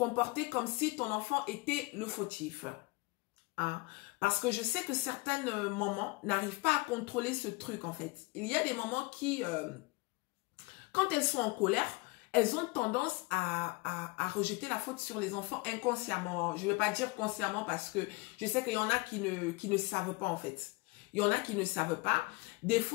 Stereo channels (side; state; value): right; quieter; 24.3 dB